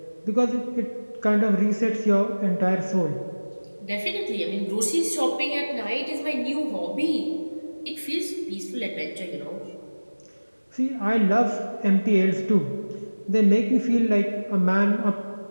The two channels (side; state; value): both; inverted; correlation -1.00